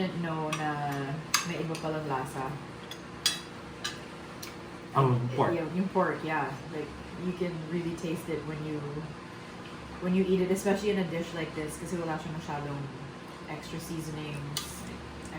know na may iba palang lasa. Ang pork. Yung pork, yeah. Like, you can really taste it when you eat it, especially in a dish like this, kasi wala siya masyadong extra seasonings. I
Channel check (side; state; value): both; identical; correlation 1.00